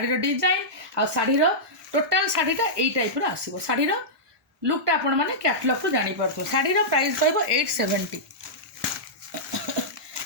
डिजाइन आ शाढ़ीर टोटाल शाढ़ीटा यही टाइप आसो। शाढ़ीर लुकटा आपण मैंने कैटलॉग रू जापर शाढ़ीर प्राइस रही 870।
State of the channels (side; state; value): both; normal; correlation -0.13